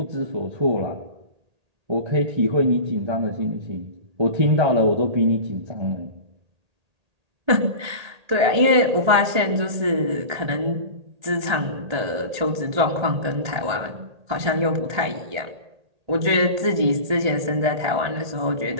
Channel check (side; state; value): left; late; 1.8 ms